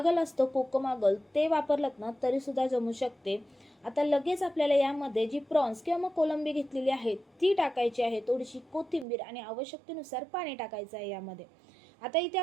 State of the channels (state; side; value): drops out; left; at 9.1 s